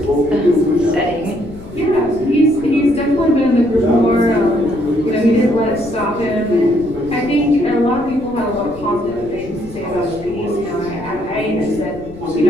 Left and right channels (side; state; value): left; noise; rumble, 18 dB below the sound